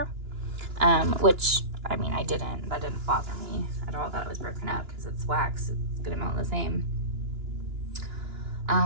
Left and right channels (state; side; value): late; left; 2.9 ms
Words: which, I mean, that didn't bother me at all that it was broken up, because it's wax, it's gonna melt the same.